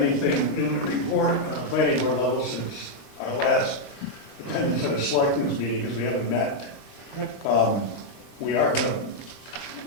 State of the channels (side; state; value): right; late; 34 ms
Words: new to report on the planning board level since our last attendance at a selectmen's meeting, because we haven't met. We are going